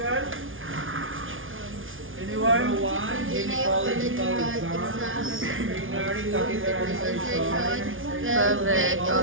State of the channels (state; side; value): late; left; 0.58 ms